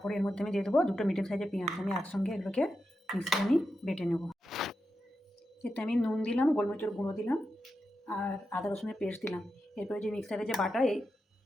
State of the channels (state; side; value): normal; both; correlation 0.88